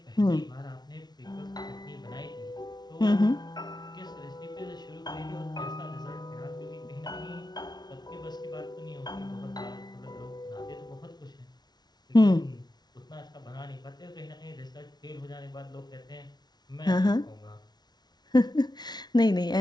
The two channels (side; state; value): right; late; 0.20 ms